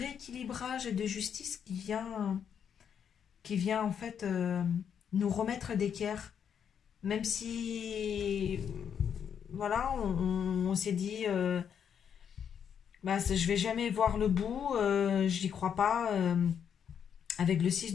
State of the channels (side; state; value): right; quieter; 8.0 dB